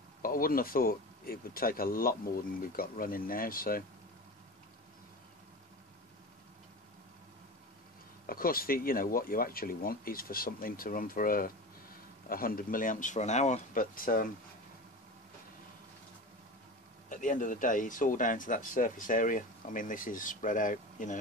but I wouldn't have thought it would take a lot more than we've got running now. So of course, you know what you actually want is for something to run for 100 milliamps for an hour, but at the end of the day, it's all down to that surface area. I mean, this is spread out, you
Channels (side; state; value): both; normal; correlation 0.29